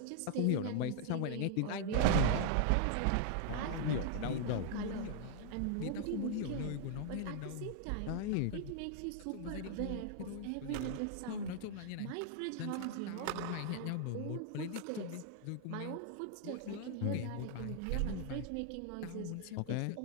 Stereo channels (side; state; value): both; different; correlation 0.00